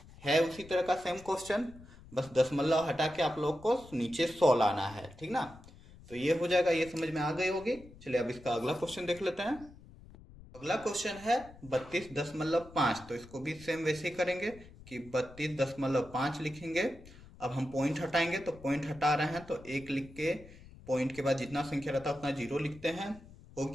है उसी तरह का सेम क्वेश्चन, बस दशमलव हटा के आप लोग को नीचे 100 लाना है, ठीक ना। तो ये हो जाएगा, ये समझ में आ गई होगी। चलिए अब इसका अगला क्वेश्चन देख लेते हैं। अगला क्वेश्चन है 32.5। तो इसको भी सेम वैसे ही करेंगे कि 32.5 लिखेंगे। अब हम पॉइंट हटाएंगे, तो पॉइंट हटा रहे हैं तो एक लिख के पॉइंट के बाद जितना संख्या रहता है उतना जीरो लिखते हैं। हो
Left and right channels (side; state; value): left; noise; rumble, 20 dB below the sound